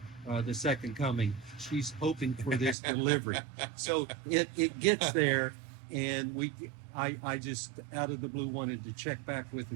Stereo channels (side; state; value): left; drops out; at 2.8 s